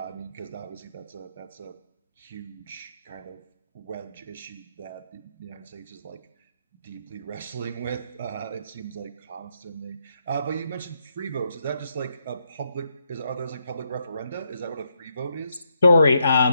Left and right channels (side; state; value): both; inverted; correlation -0.79